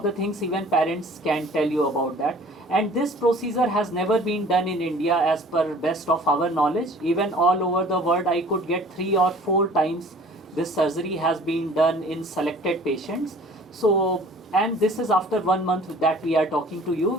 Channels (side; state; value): both; normal; correlation 0.49